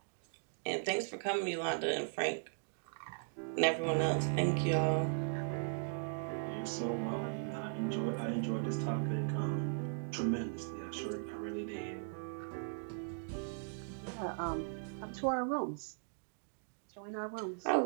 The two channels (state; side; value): silent; left; digital silence